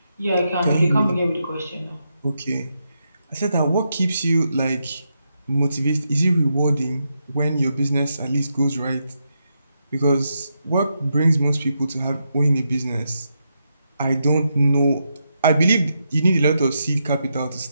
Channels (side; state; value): both; inverted; correlation -0.83